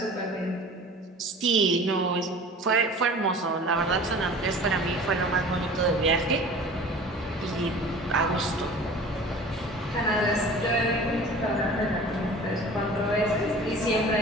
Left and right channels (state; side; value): normal; both; correlation 0.42